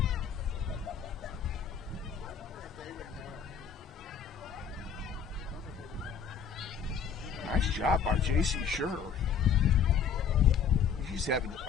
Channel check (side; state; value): right; quieter; 6.7 dB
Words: Nice job by J.C. Sure. She's having